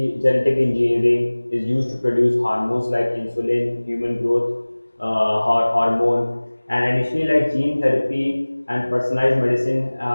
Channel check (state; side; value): inverted; both; correlation -1.00